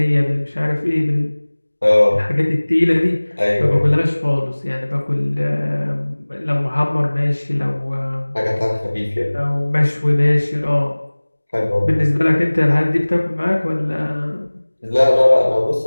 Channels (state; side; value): inverted; both; correlation -1.00